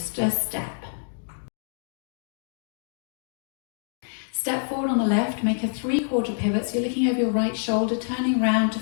step. Step forward on the left, make a 3/4 pivot, so you're looking over your right shoulder, turning round to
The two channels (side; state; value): right; silent; digital silence